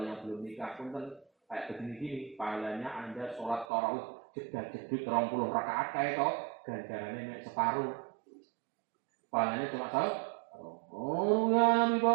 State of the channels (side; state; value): left; drops out; at 3.7 s